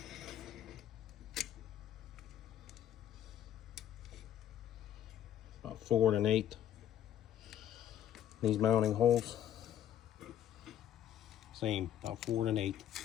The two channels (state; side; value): quieter; right; 11.0 dB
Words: About 4 1/8. These mounting holes. Same, about 4 1/8.